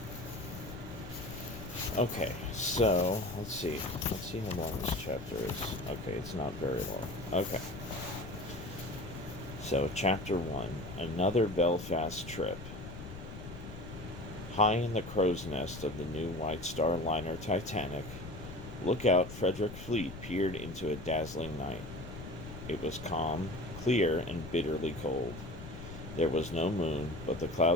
Okay, so let's see. Let's see how long this chapter is. Okay, it's not very long. Okay. So, Chapter 1, Another Belfast Trip. High in the crow's nest of the new White Star liner Titanic, lookout Frederick Fleet peered into a dazzling night. It was calm, clear, and bitterly cold. There was no moon, but the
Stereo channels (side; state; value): left; noise; rumble, 11 dB below the sound